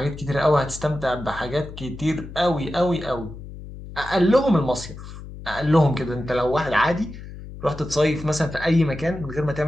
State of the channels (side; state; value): left; noise; hum, 13 dB below the sound